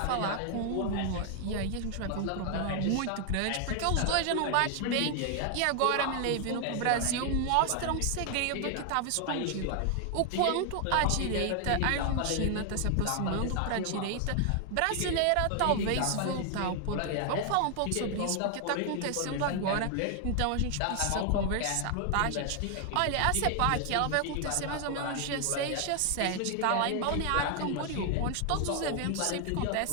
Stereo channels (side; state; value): both; different; correlation 0.00